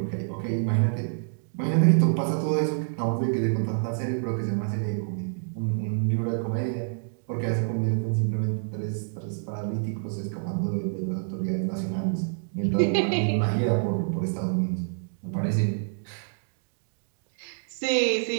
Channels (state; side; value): silent; left; digital silence